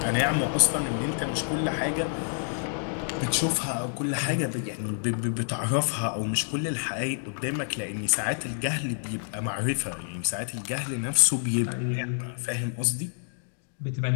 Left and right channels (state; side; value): silent; right; digital silence